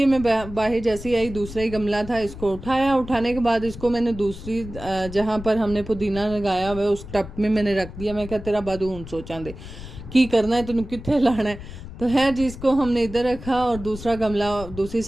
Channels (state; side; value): noise; left; rumble, 13 dB below the sound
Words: मैं बाहर जैसे ही आई दूसरा ही गमला था, इसको उठाया। उठाने के बाद इसको मैंने दूसरी जहाँ पर हमने पुदीना लगाया हुआ है उस टब में मैंने रख दिया। मैं क्या तेरा बादू हूँ सोचा दे की करना है, तेन कितने लाना है। तो है जी, इसको हमने इधर रखा और दूसरा गमला दूसरी